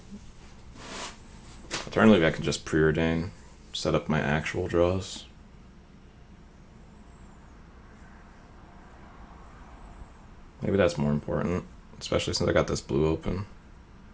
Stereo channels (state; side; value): identical; both; correlation 1.00